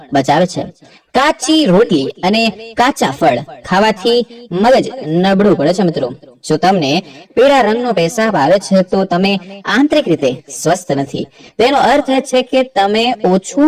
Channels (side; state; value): both; identical; correlation 1.00